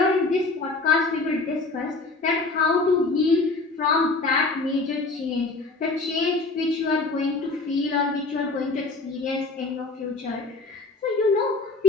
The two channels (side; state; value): right; quieter; 3.6 dB